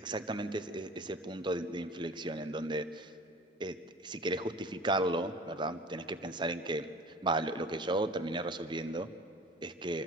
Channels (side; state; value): both; normal; correlation 0.42